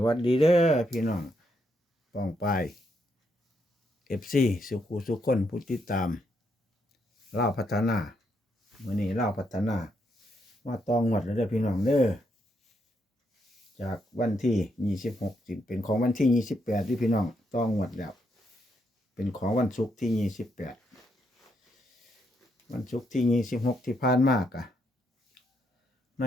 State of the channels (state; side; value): normal; both; correlation 0.77